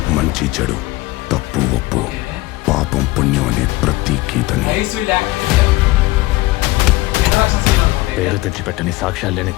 మంచి చెడు, తప్పు ఒప్పు, పాపం పుణ్యం అనే ప్రతి గీతని nice will act. Introduction scene అనుకుంటే. పేరు తెచ్చిపెట్టని, సాక్ష్యాలు లేని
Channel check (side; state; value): right; quieter; 19.6 dB